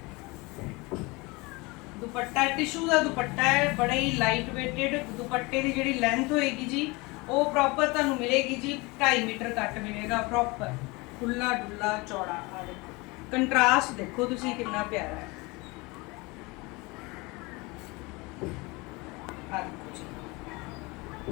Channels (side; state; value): right; quieter; 25.2 dB